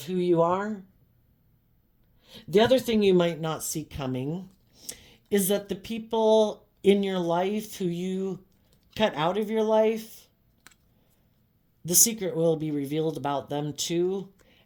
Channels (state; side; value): identical; both; correlation 1.00